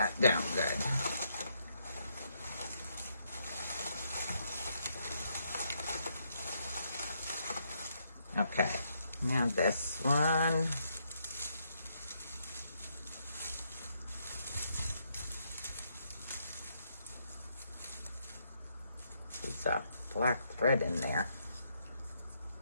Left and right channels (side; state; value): both; inverted; correlation -0.75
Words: down good. Okay, now this one. There's a black thread in there.